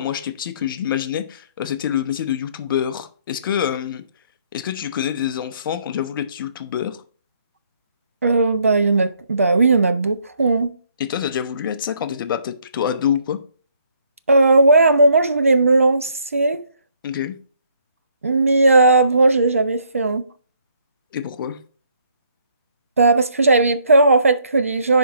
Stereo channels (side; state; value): both; inverted; correlation -0.67